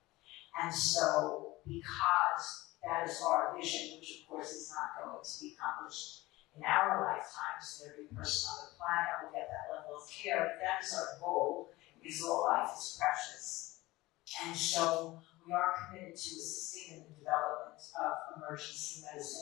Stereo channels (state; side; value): quieter; right; 19.5 dB